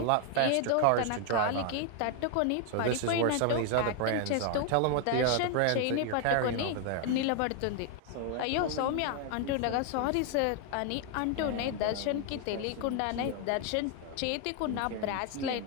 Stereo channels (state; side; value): different; both; correlation 0.00